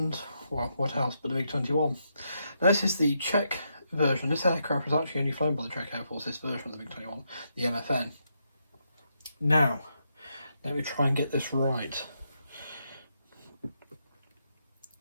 well, what else but the MiG-21? Now, this is the Czech version. This aircraft was actually only flown by the Czech Air Force, this version of the MiG-21, the MFN. Now, let me try and get this right.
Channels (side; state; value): both; inverted; correlation -0.80